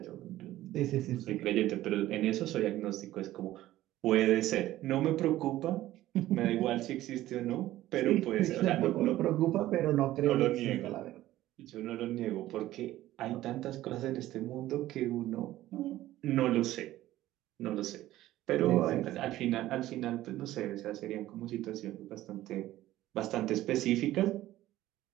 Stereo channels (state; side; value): quieter; left; 15.0 dB